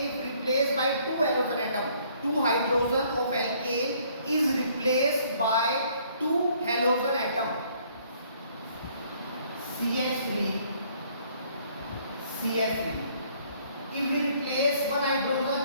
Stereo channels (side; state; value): both; inverted; correlation -0.62